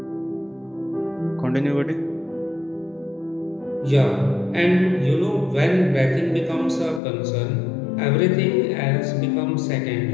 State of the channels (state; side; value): drops out; right; at 7.0 s